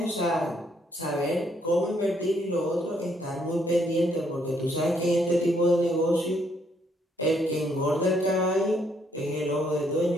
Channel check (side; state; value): both; normal; correlation 0.70